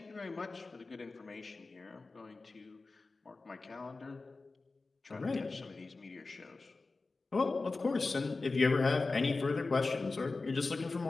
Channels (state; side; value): quieter; right; 3.7 dB